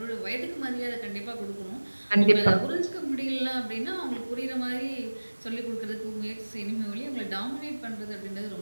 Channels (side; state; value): both; inverted; correlation -1.00